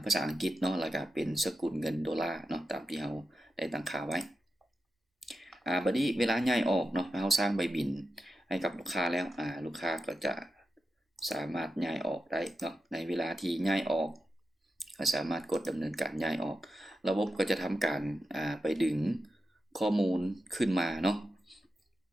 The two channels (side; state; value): both; normal; correlation 0.90